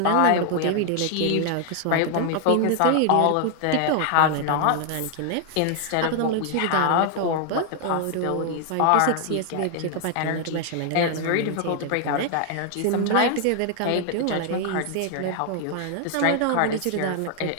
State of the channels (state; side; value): different; both; correlation 0.00